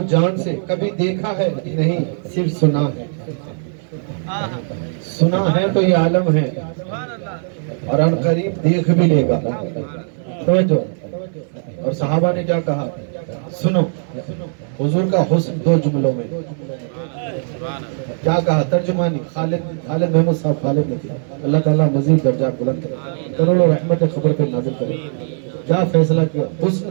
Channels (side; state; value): left; silent; digital silence